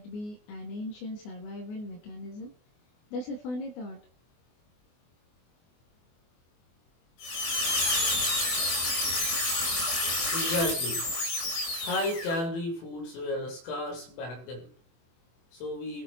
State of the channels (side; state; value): right; late; 24 ms